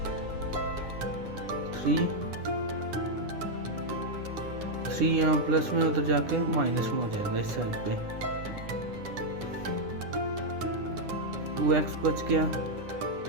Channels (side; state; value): left; late; 10 ms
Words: थ्री यहाँ प्लस में उधर जाके माइनस में हो जाएगा इस साइड पे। 2x बच गया,